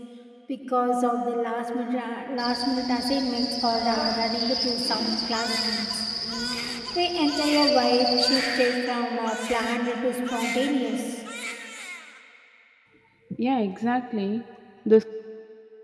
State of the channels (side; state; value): both; identical; correlation 1.00